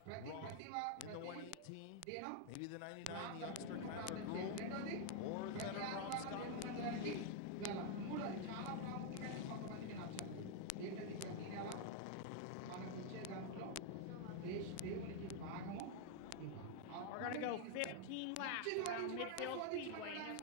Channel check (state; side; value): different; both; correlation 0.00